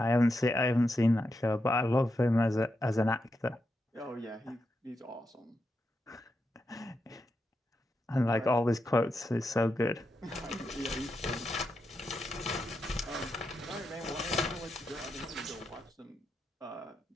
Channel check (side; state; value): both; normal; correlation 0.86